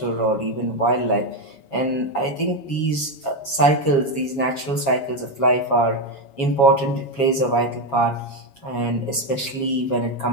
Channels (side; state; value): right; late; 7.3 ms